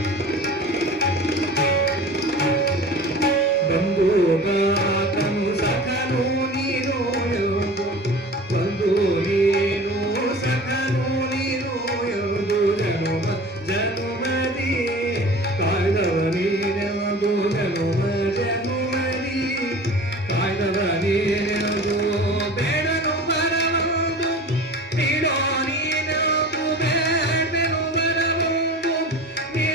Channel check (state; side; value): normal; both; correlation 0.38